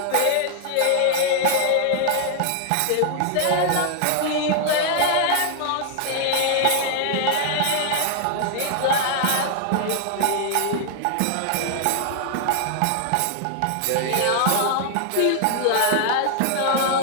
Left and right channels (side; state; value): both; different; correlation 0.00